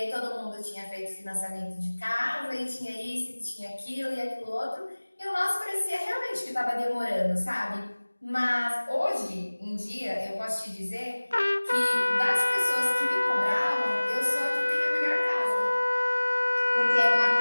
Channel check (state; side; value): inverted; both; correlation -1.00